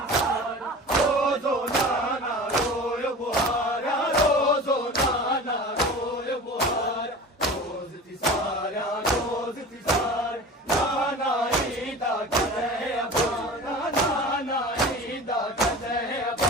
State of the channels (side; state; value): both; normal; correlation 0.36